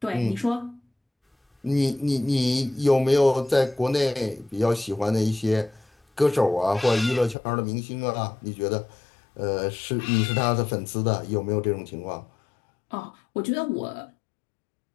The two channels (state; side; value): drops out; right; at 7.4 s